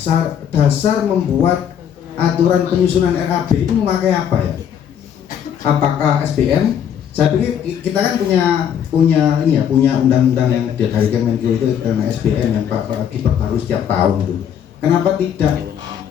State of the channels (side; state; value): right; quieter; 8.8 dB